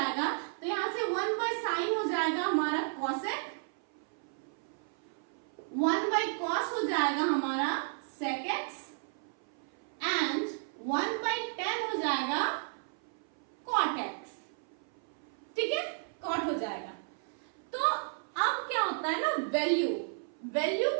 तो यहाँ से 1 बाई साइन हो जाएगा हमारा कॉसेक, 1 बाई कॉस हो जाएगा हमारा sec X, and 1 by tan हो जाएगा कॉट एक्स। ठीक है, कॉट हो जाएगा। तो अब क्या होता है ना, वैल्यू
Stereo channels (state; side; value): silent; left; 55 dB below the other